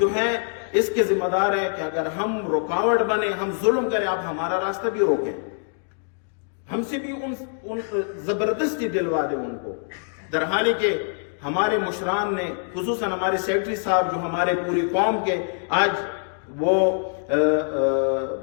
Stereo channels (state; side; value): silent; right; 62 dB below the other